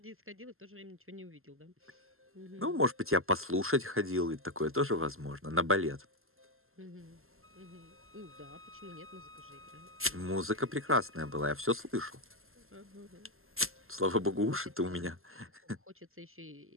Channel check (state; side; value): late; left; 0.61 ms